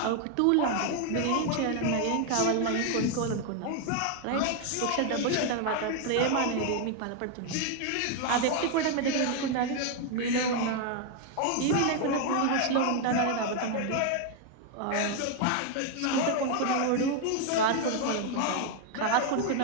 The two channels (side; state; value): both; different; correlation 0.00